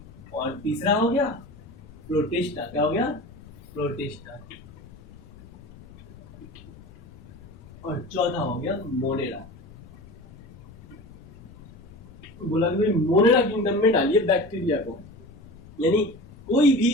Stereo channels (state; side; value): noise; left; rumble, 21 dB below the sound